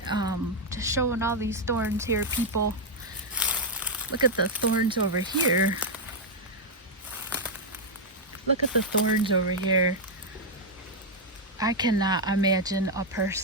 Just showing all these thorns here, people. Look at the thorns over here. Look at the thorns over here. I cannot imagine a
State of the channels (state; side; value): normal; both; correlation -0.01